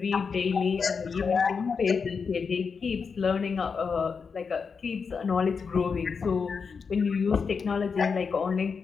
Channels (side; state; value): right; quieter; 5.6 dB